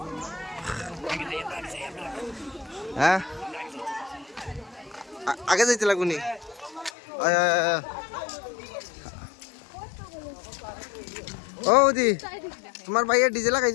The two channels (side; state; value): right; drops out; at 6.9 s